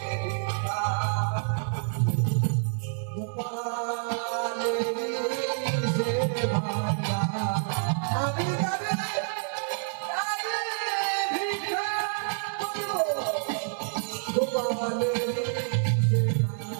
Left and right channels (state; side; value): silent; left; 59 dB below the other